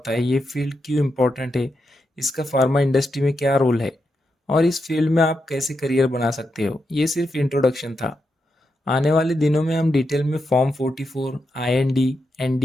है, ये फील्ड क्यों इम्पोर्टेंट है, इसका फार्मा इंडस्ट्री में क्या रोल है और इस फील्ड में आप कैसे करियर बना सकते हो। ये सिर्फ इंट्रोडक्शन था। आने वाले दिनों में हम डिटेल में form 44, IND,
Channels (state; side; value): normal; both; correlation 0.85